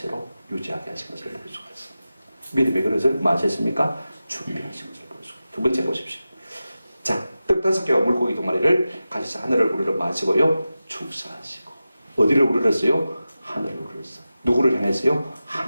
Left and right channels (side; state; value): both; inverted; correlation -0.94